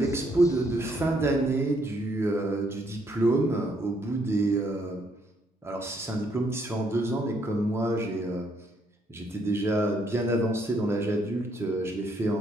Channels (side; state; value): both; normal; correlation 0.71